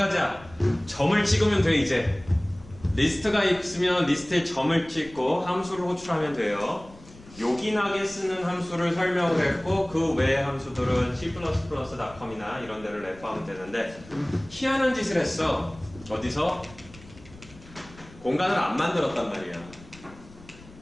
점을 찍으면 돼 이제. 리스트가 있으면 리스트에 점을 찍고 함수를 호출하면 돼요. 요긴하게 쓰는 함수를 설명을 했고 그 외의 함수들은 C++.com이나 이런 데를 레퍼하면 되는데 희한한 짓을 했어. 어디서? 공간을 안 만들었단 말이야.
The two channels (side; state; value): left; noise; rumble, 21 dB below the sound